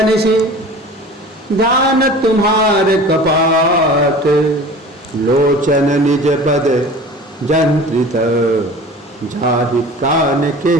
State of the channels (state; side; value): normal; both; correlation 0.40